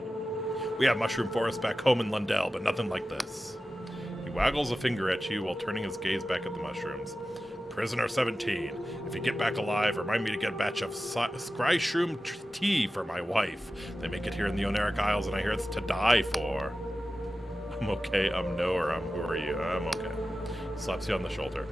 We have mushroom forests back home in Lundell, but nothing like this. He waggles a finger at you while turning his gaze back at the mushrooms. Prisoner 17, if you get back alive, remind me to get a batch of scryshroom tea for my wife. They make it here in the Oneric Isles, and I hear it's to die for. I'm okay, no, or who are you? I'm okay. Slaps you on the shoulder.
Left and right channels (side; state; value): both; normal; correlation 0.94